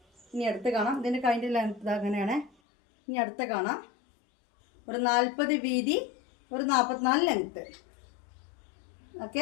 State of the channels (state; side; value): drops out; right; at 2.5 s